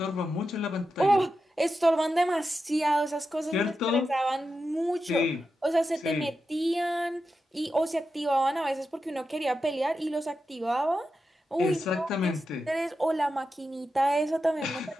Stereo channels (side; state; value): both; normal; correlation 0.89